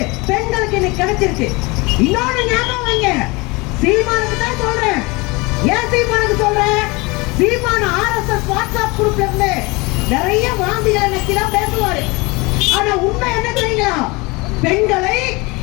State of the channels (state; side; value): quieter; right; 25.4 dB